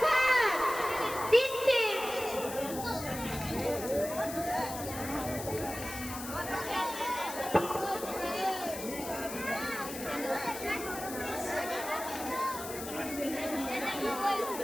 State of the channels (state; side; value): noise; left; hiss, 9 dB below the sound